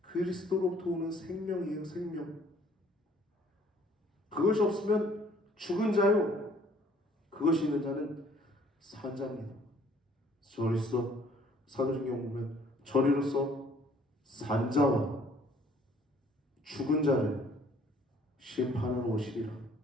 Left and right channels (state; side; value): normal; both; correlation 0.59